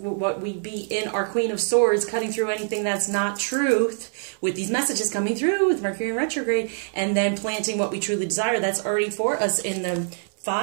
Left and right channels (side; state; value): left; silent; 62 dB below the other